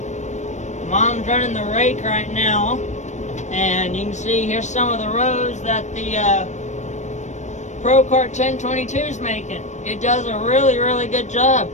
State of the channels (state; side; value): late; right; 0.34 ms